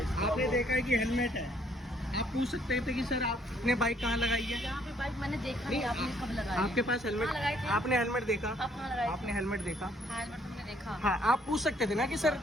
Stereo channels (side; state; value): both; normal; correlation 0.65